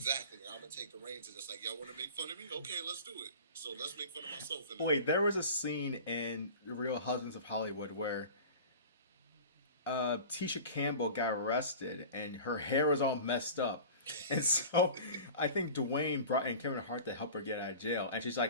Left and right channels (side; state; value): both; inverted; correlation -0.38